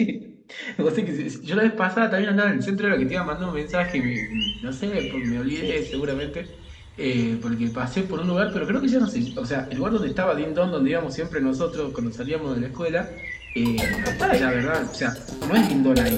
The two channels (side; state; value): both; identical; correlation 1.00